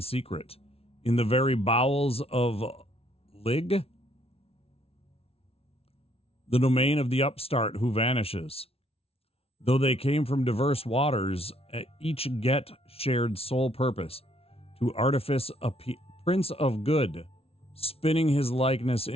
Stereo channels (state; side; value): late; right; 0.28 ms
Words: in the very bowels of Lig, the domain of the upstart who vanishes. Though they came from diverse waters, each get shared sole purpose, to artifice a prince of good, spinning his likeness